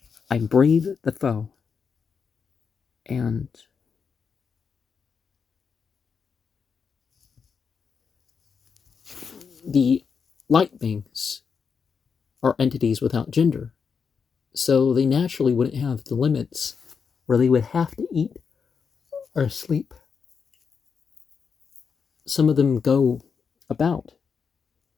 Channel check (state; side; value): quieter; right; 6.1 dB